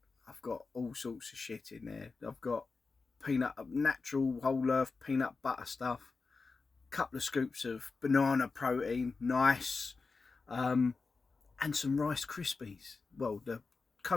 I've got all sorts of shit in there. I've got natural whole earth peanut butter stuff, couple of scoops of banana protein, nice, and some Rice Krispies, well, the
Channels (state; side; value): quieter; right; 4.3 dB